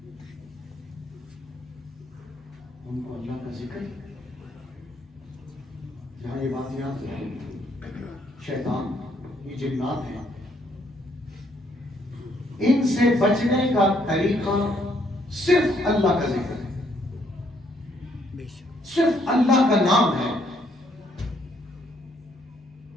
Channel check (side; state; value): both; normal; correlation 0.70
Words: ان کو اللہ کا ذکر جہاں یہ بات یاد ہے شیطان یہ جنات ہیں ان سے بچنے کا طریقہ صرف اللہ کا ذکر ہے صرف اللہ کا نام ہے